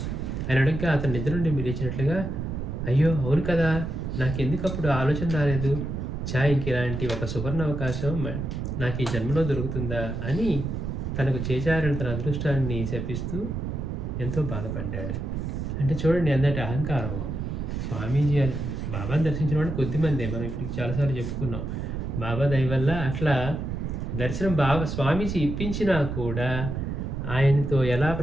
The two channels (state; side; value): noise; right; rumble, 4 dB below the sound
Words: అని అడగగా అతను నిద్ర నుండి మీరు ఇచ్చినట్లుగా, అయ్యో అవును కదా, నాకెందుకు అప్పుడు ఆలోచన రాలేదు, ఇంక ఇలాంటి ఒక సువర్ణ అవకాశం నాకు ఈ జన్మలో దొరుకుతుందా అని తనకు చేజారిన తన అదృష్టాన్ని శపిస్తూ ఎంతో బాధపడ్డాడు. అంటే చూడండి ఎంతటి అహంకారం. స్వామీజీ అని బాబాని దర్శించిన వాళ్ళు కొద్దిమందే, మనం ఇప్పుడు చాలాసార్లు చెప్పుకున్నాం. బాబా దయ వల్ల అట్లా దర్శనం స్వామీజీ ఇప్పించినా కూడా ఆయనతో ఎలా